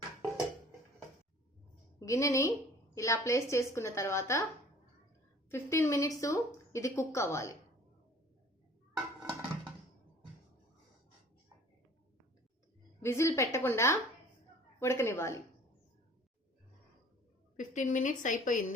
గిన్నెని ఇలా ప్లేస్ చేసుకున్న తర్వాత 15 మినిట్స్ ఇది కుక్ అవ్వాలి. విజిల్ పెట్టకుండా ఉడకనివ్వాలి. 15 మినిట్స్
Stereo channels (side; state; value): both; normal; correlation 0.50